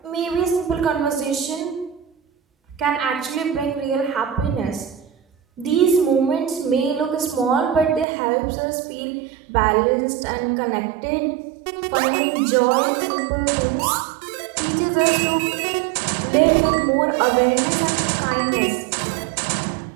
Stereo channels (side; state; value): left; drops out; at 8.1 s